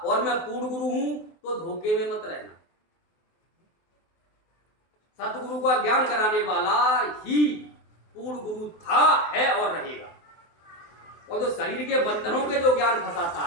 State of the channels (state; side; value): late; right; 23 ms